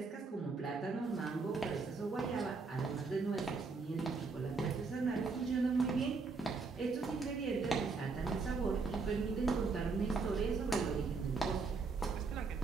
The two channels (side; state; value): left; quieter; 4.3 dB